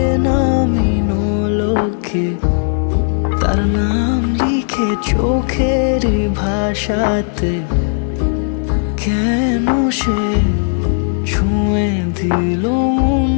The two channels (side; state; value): right; silent; 66 dB below the other